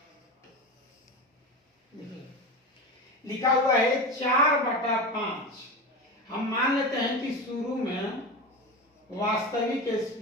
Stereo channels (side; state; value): both; normal; correlation 0.24